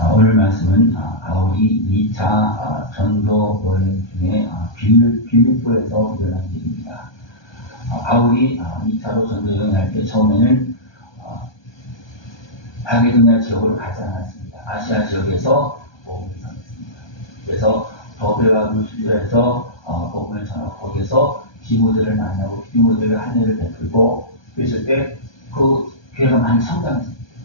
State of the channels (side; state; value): right; late; 1.2 ms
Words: 오늘 말씀은 바울이 2차 전도 여행 중에 빌립보에서 일어난 일입니다. 바울이 2차로 전도 여행할 때 처음에는 마게도냐 지역으로 가지 않았습니다. 아시아 지역에서 복음을 전했습니다. 그래서 더베와 루스드라에서 복음을 전하고 거기에서 디모데를 만나고 디모데를 한해를 베풀고 그랬을 때 그 교회가 많이 성장했습니다.